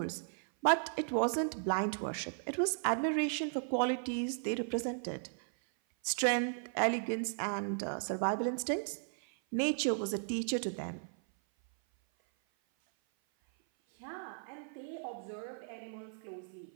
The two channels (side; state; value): left; silent; 54 dB below the other